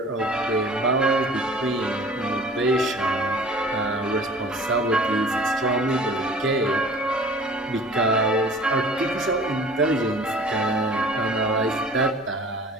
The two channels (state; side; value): normal; both; correlation 0.46